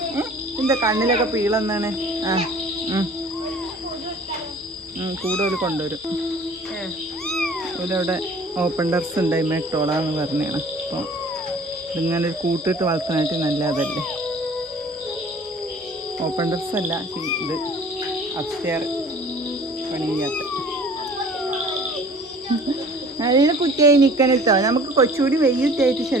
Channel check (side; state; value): both; normal; correlation 0.49